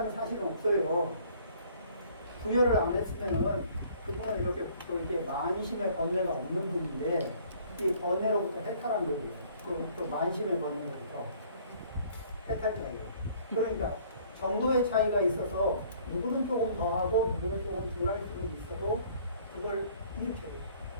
사실은 없어요. 부여를 안 했으면은 그분은 이렇게 만심의 번뇌가 없는 분인데 이 번뇌로부터 해탈한 거예요. 또 만심의 번뇌로부터 해탈자예요. 그러니까 정도의 차이가 있어서 누구는 조금 더 하고 누구는 조금 덜 할 수도 있어도 그걸 일으켜요.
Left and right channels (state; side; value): inverted; both; correlation -0.57